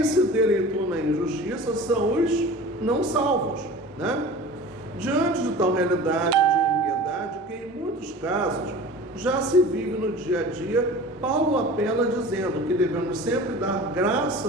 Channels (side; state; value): both; normal; correlation 0.39